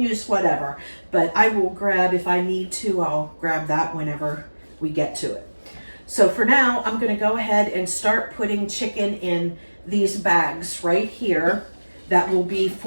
whatever. But I will grab, if I need to, I'll grab that whenever we get to it. So for now, I'm going to go ahead and start putting chicken in these bags right here. That will be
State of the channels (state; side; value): inverted; both; correlation -1.00